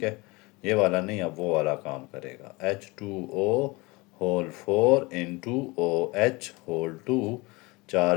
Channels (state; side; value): quieter; right; 24.6 dB